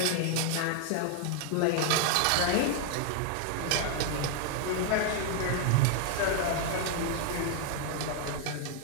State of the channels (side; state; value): both; different; correlation 0.00